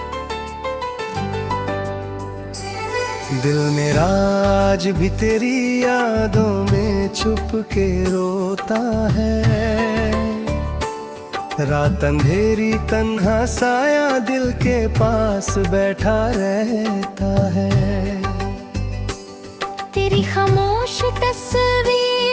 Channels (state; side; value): identical; both; correlation 1.00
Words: दिल मेरा आज भी तेरी यादों में छुप के रोता है। रात अंधेरी तन्हा साया दिल के पास बैठा रहता है। तेरी खामोश